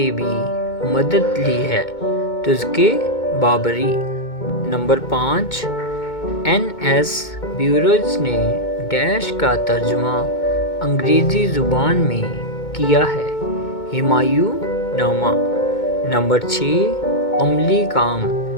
بھی مدد لی ہے، تذکرہ بابری۔ نمبر 5 این ایس بیروز نے ڈیش کا ترجمہ انگریزی زبان میں کیا ہے، ہمایوں نامہ۔ نمبر 6 عملی کام،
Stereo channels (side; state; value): right; late; 2.2 ms